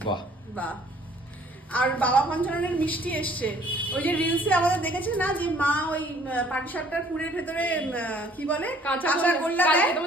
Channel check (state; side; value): normal; both; correlation 0.58